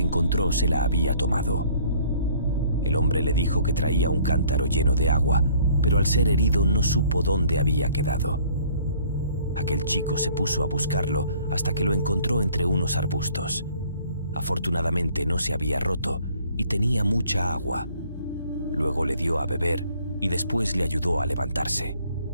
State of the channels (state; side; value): inverted; both; correlation -0.57